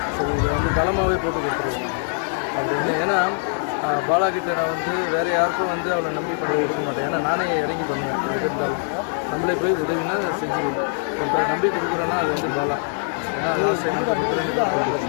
ஸோ இதை வந்து தளமாகவே போட்டு கொடுத்துருவோம் அப்படின்னு. ஏன்னா பாலாகிட்ட நான் வந்து வேறு யாருக்கும் வந்து அவளை நம்பி பண்ண இருக்க மாட்டேன். ஏன்னா நானே இறங்கி பண்ணுவேன். எது இருந்தாலும் நம்மளே போய் உதவினா செஞ்சுருவோம். இப்போ நம்பி கொடுக்குறேன்னா அது வந்து பாலா. ஏன்னா நான் செஞ்சு கொடுக்குறேன்னு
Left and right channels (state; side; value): silent; right; digital silence